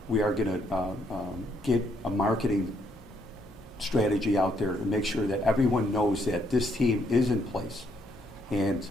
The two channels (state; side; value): normal; both; correlation 0.72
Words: going to get a marketing strategy out there to make sure that everyone knows that this team is in place. And